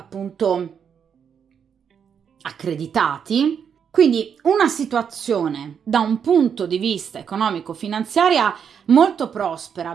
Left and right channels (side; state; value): left; quieter; 7.4 dB